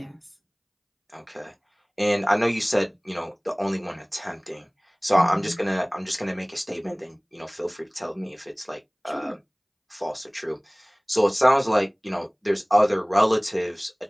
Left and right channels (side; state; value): both; identical; correlation 1.00